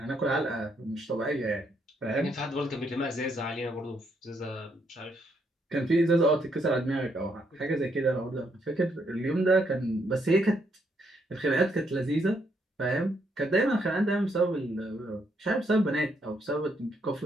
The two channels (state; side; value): normal; both; correlation 0.74